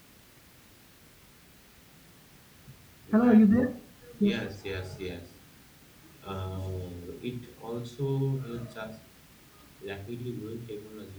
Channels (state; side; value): identical; both; correlation 1.00